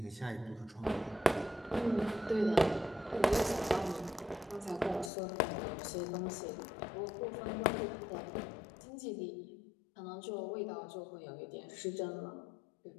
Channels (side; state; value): right; drops out; at 5.1 s